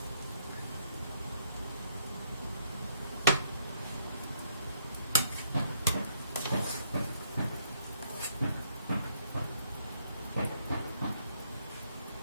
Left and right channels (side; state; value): both; inverted; correlation -0.71